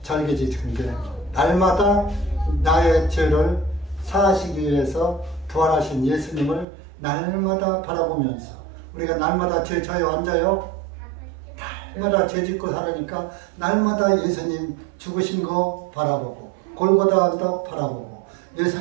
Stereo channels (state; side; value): drops out; left; at 6.7 s